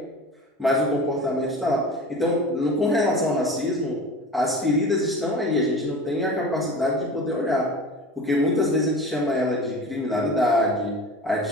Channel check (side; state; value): both; normal; correlation 0.35